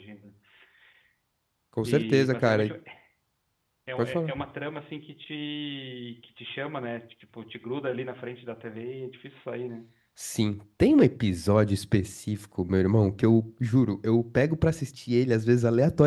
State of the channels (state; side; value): identical; both; correlation 1.00